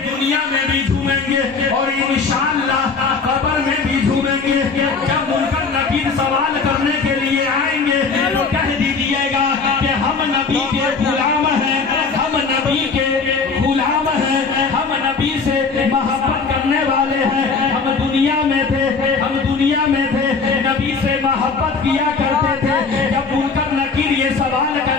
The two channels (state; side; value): quieter; right; 4.8 dB